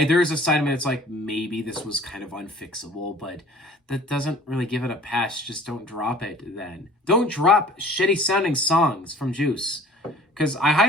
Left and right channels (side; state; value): both; normal; correlation 0.49